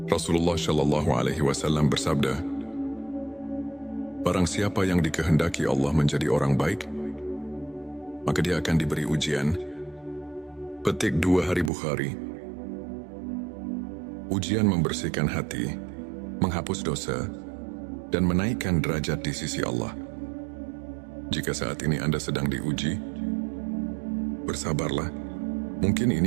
Rasulullah Shallallahu Alaihi Wasallam bersabda, barang siapa yang dikehendaki Allah menjadi orang baik, maka dia akan diberi ujian. Petik 2 Hari Bukhari. Ujian membersihkan hati, menghapus dosa, dan menaikkan derajat di sisi Allah. Jika saat ini Anda sedang diuji, bersabarlah. Mungkin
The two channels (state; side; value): drops out; left; at 11.7 s